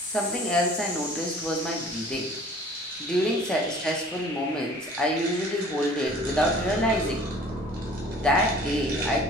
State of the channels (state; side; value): normal; both; correlation 0.49